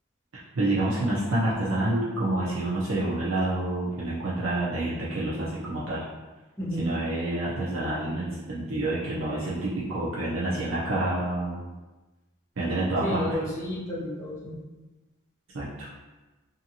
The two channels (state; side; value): normal; both; correlation 0.56